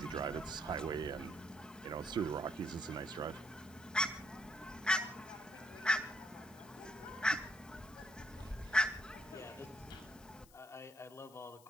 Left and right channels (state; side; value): noise; left; hiss, 24 dB below the sound